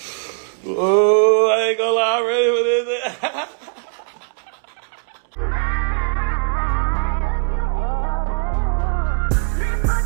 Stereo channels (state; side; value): silent; left; 66 dB below the other